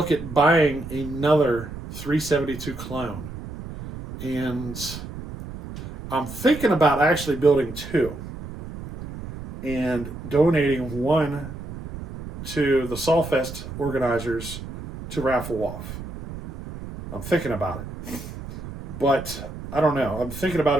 at buying another 372 clone, and I'm thinking about actually building two and donating one to the Sawfest organizers to raffle off. I'm thinking about it, but I don't know. I'm thinking about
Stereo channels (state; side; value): noise; right; rumble, 10 dB below the sound